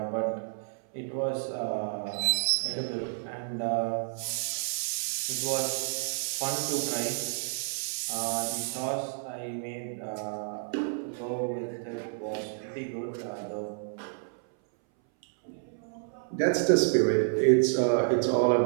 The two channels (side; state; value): left; silent; 58 dB below the other